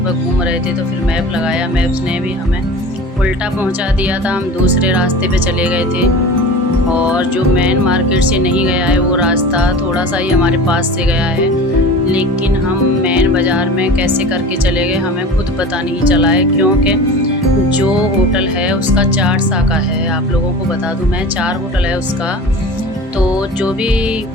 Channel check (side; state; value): both; normal; correlation 0.36